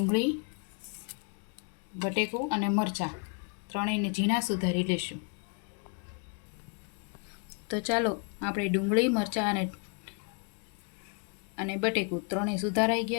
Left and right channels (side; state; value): right; quieter; 37.4 dB